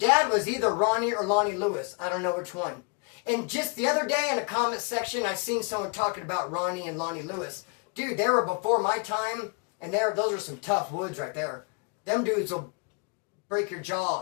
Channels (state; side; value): quieter; right; 34.1 dB